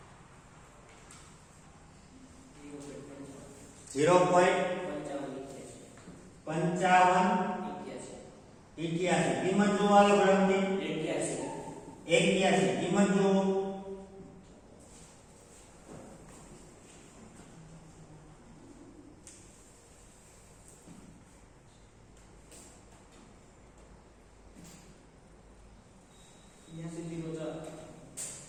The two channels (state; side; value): identical; both; correlation 1.00